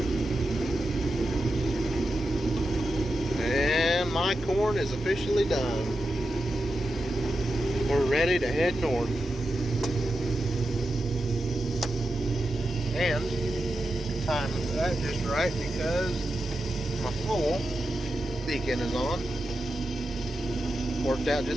My corn is officially done. We're ready to head north. And time that just right because my full beacon is on. Worked out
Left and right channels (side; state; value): both; normal; correlation 0.89